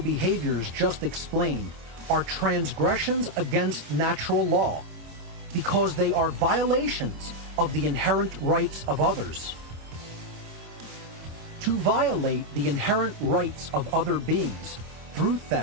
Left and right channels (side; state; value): left; late; 26 ms